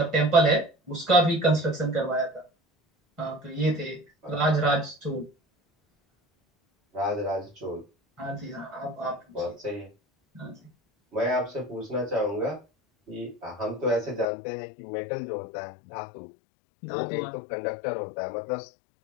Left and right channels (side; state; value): right; drops out; at 14.2 s